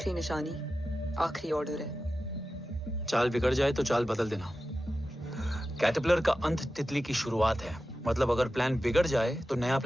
निशानी, आखिरी ऑर्डर है। चाल बिगड़ जाए तो चाल बदल देना। कैटरपिलर का अंत तितली की शुरुआत है। मतलब अगर प्लान बिगड़ जाए तो नया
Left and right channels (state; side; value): normal; both; correlation 0.93